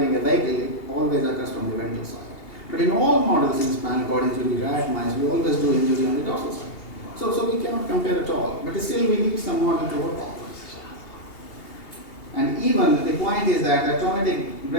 a vehicle, it always occurs from the ventral side. But in all models in spinal cord injury, rat, mice, we always do injury on the dorsal side. So we cannot compare at all. But still, we need some model to work on. And even the point is that a traumatic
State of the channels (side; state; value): right; late; 2.8 ms